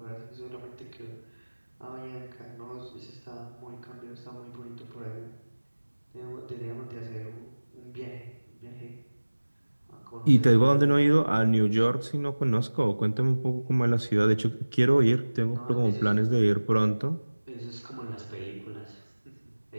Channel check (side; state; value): both; inverted; correlation -1.00